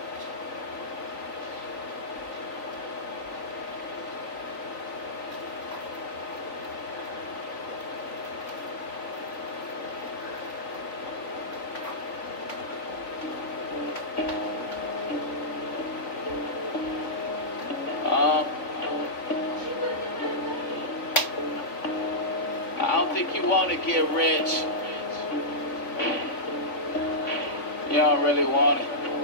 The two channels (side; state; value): right; late; 3.5 ms